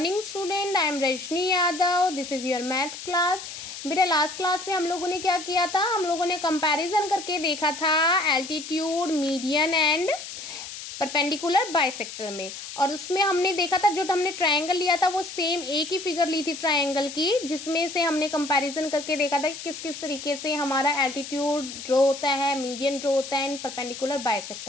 student, I am Rajni Yadav. This is your math class. बेटा last class में हम लोगों ने क्या किया था, हम लोगों ने कंपैरिजन करके देखा था altitude, median and perpendicular bisector में। और उसमें हमने देखा था जो हमने ट्रायंगल लिया था वो सेम एक ही फिगर ली थी ट्रायंगल की, जिसमें से हमने कंपैरिजन करके देखा था कि किस किस तरीके से हमारा एल्टीट्यूड ड्रॉ होता है, मीडियन ड्रॉ होता है एंड परपेंडिकुलर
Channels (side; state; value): left; noise; hiss, 10 dB below the sound